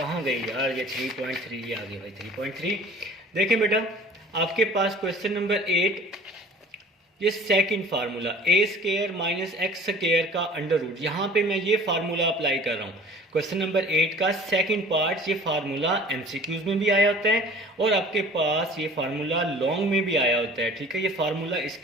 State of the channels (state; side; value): normal; both; correlation 0.46